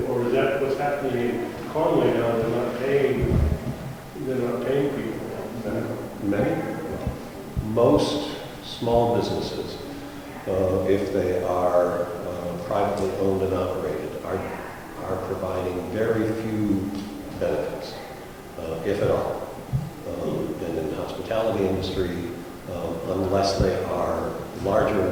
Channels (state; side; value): identical; both; correlation 1.00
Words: or is that what's happening in Conway now? They're not paying people. Most small businesses, if they are privately owned and operated, are providing very few benefits, if at all. And in the hospitality industry, unless they are larger